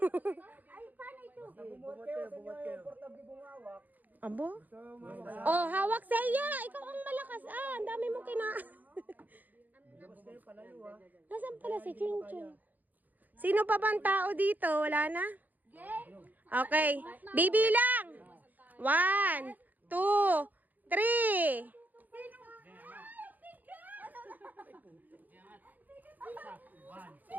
Ay, paano ito? Bumuhat kayo sa inyo yung portable bumawak. Abo? Oh, hawak sa iya. Ikaw ang malakas. Ang dami mo kina... Nasaan pala si Chinchon? Sino pa bang tao dito? Wala na? Okay. Bibilang. 1, 2, 3.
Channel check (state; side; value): late; left; 0.083 ms